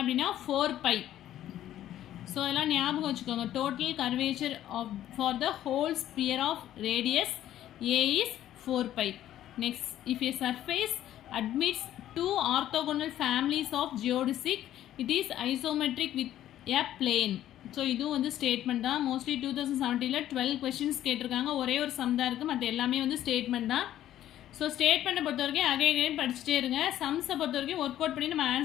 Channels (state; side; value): quieter; right; 12.4 dB